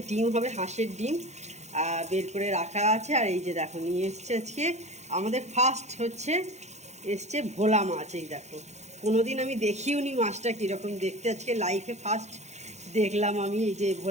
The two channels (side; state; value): left; late; 0.33 ms